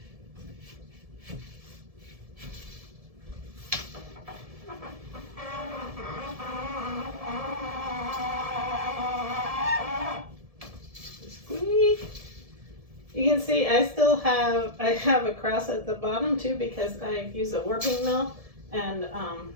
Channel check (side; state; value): left; late; 1.7 ms